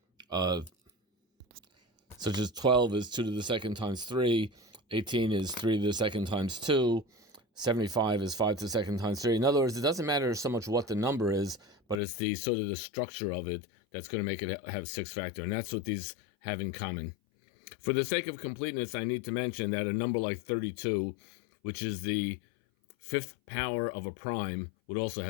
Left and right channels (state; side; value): drops out; right; at 12.0 s